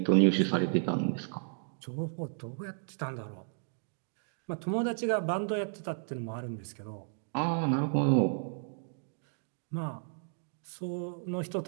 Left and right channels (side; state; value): left; silent; digital silence